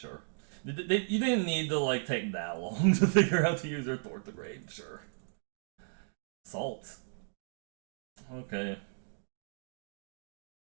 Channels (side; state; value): left; silent; digital silence